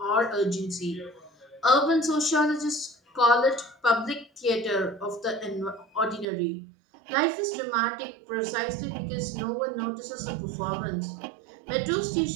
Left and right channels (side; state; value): left; drops out; at 6.2 s